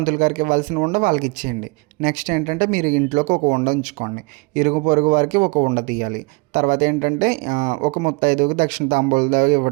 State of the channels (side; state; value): left; quieter; 27.6 dB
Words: గారికి ఇవ్వాల్సిన ఉండ వాళ్ళకి ఇచ్చేయండి. నెక్స్ట్ ఏంటంటే, మీరు ఇంట్లోకి ఒక ఉండ ఉంచుకోండి, ఇరుగు పొరుగు వారికి ఒక ఉండ తీయాలి. తర్వాత ఏంటంటే, ఒక ముత్తైదువుకి దక్షిణ తాంబూలం